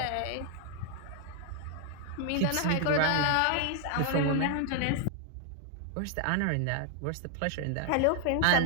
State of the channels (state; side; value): different; both; correlation 0.00